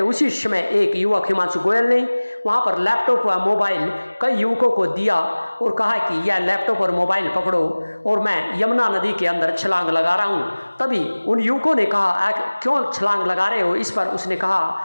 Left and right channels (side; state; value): both; inverted; correlation -1.00